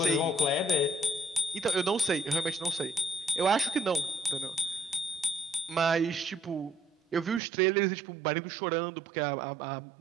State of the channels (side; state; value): left; drops out; at 7.4 s